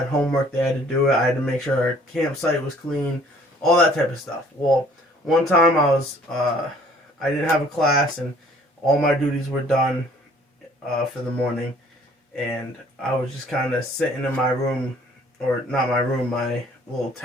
homework, they had to do it. I had to make sure our campsite was clean, all that type of stuff. Well, one time I didn't have a class, and all my duties were done for the morning, and I was just kind of sitting in my room, or not my room, my little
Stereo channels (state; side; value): normal; both; correlation 0.56